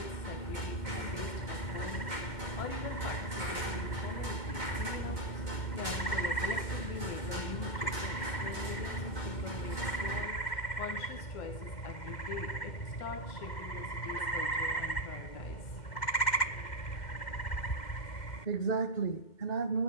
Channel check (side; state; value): right; late; 2.2 ms